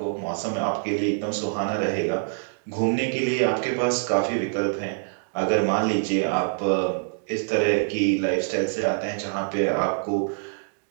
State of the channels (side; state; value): left; silent; digital silence